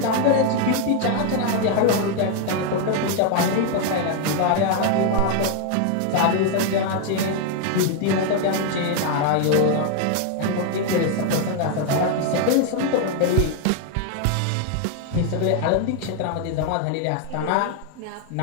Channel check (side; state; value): both; different; correlation 0.01